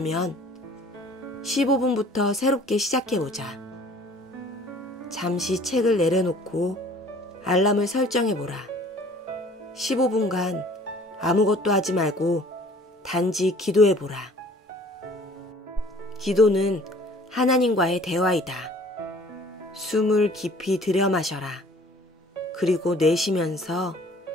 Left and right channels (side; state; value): both; normal; correlation 0.52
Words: 15분부터 새롭게 시작해보자. 잠시 책을 내려놓고 알람을 설정해보라. 15분간 아무것도 하지 말고 단지 기도해보라. 기도는 하나님과의 대화이다. 숨을 깊이 들여 마셔라. 그리고 내쉬면서